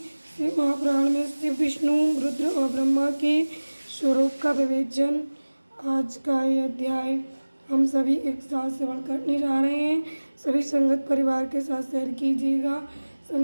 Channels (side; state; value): both; inverted; correlation -1.00